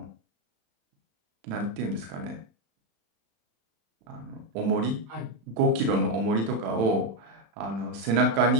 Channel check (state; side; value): late; left; 35 ms